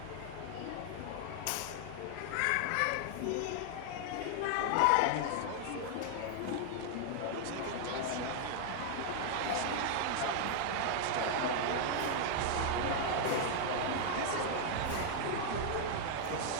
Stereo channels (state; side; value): different; both; correlation 0.00